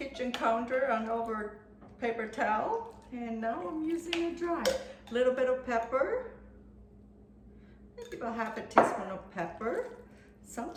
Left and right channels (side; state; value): both; identical; correlation 1.00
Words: counter on over paper towel. And now I'm using it dry. A little bit of pepper. Maybe about half a teaspoon of pepper.